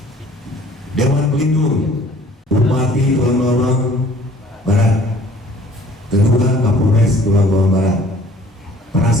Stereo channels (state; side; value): normal; both; correlation 0.54